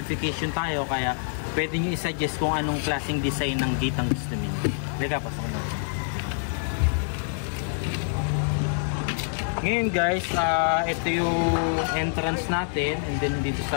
tayo, kaya pwede nyo i-suggest kung anong klaseng design ng gate ang gusto niyo. Lika, pasukin natin. Ngayon guys, ito yung entrance natin, and then dito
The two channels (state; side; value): silent; right; 61 dB below the other